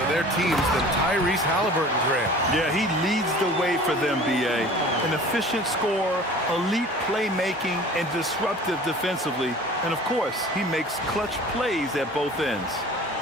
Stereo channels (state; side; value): normal; both; correlation 0.44